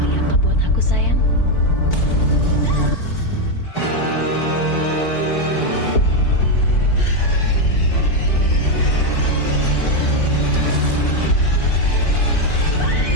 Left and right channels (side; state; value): right; late; 4.5 ms